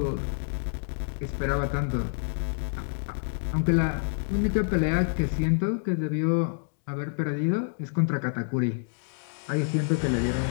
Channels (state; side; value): silent; right; digital silence